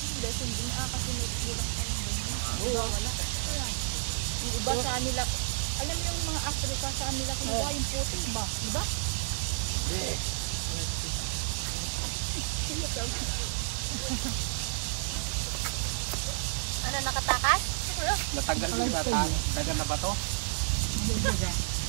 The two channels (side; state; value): left; silent; digital silence